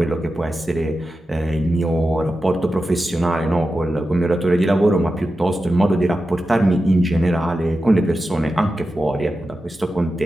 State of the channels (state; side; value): normal; both; correlation 0.91